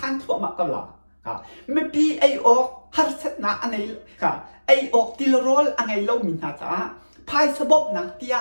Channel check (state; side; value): inverted; both; correlation -1.00